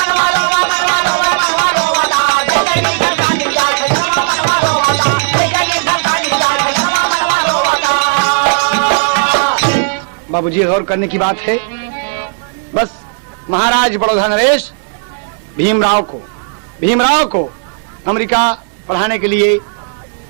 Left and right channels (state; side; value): silent; left; 69 dB below the other